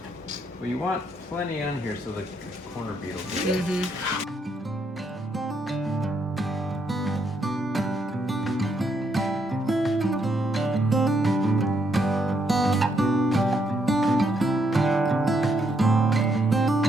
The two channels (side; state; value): both; normal; correlation 0.75